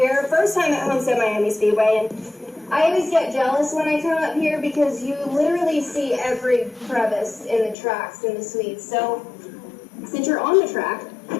first time at Homestead Miami Speedway, and I always get jealous when I come up here because you literally see every crevice in the tracks in the suites. So, since you're on the track,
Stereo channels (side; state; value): right; drops out; at 7.8 s